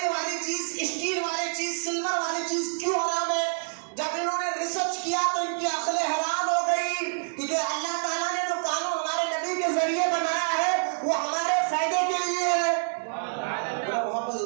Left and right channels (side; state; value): left; silent; digital silence